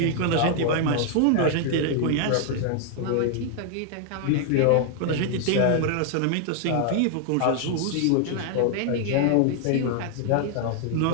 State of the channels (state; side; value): different; both; correlation 0.00